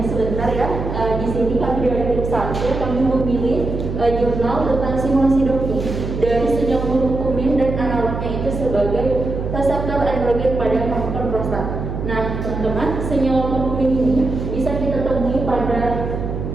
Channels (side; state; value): right; noise; hum, 5 dB below the sound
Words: sebentar ya. Di sini kami dari tim 1 kami memilih jurnal tentang simulasi doki dari sejak kumin dan analognya itu sebagai reseptor androgen pada kanker prostat. Nah teman-teman, senyawa kumin ini bisa kita temui pada